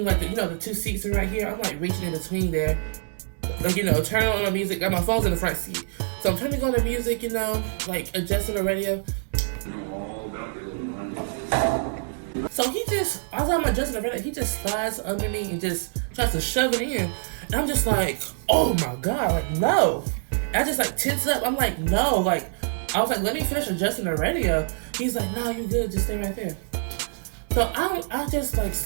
like the two seats are right here. I'm like reaching in between there. Like, turning on the music. Got my phone's in the front seat. So I'm turning on the music, like adjusting the radio. So as I'm adjusting the radio, he just slides under me and just tries to shove it in. And I'm just like, oh my God, like, no. And I just like tense up. I'm like, no, like, I was like, let me finish adjusting the radio. He's like, no, you good, just stay right there. So I just like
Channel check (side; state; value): left; silent; 61 dB below the other